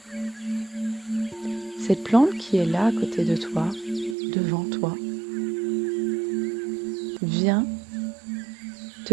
Cette plante qui est là à côté de toi, devant toi, vient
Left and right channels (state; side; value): drops out; left; at 4.2 s